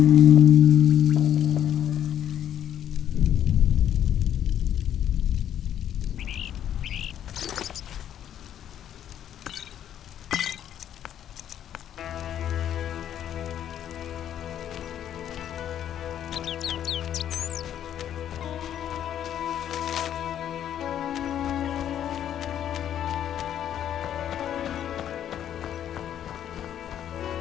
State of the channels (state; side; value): quieter; right; 10.3 dB